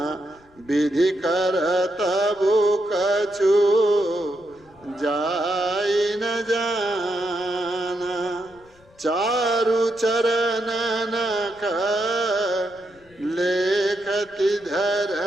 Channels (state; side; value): noise; left; rumble, 29 dB below the sound